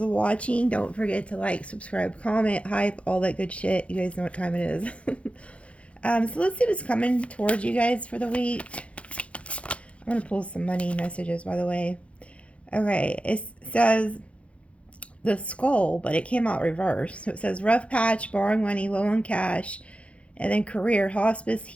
watching. Don't forget to like, subscribe, comment, hype, all that good shit. You guys know what time it is. So let's see what's coming towards you guys for the week. I'm going to pull some money messages, by the way. Okay, it says the skull, but it came out reversed. So it says rough patch, borrowing money, low on cash, and then career, hospice,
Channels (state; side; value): late; right; 0.062 ms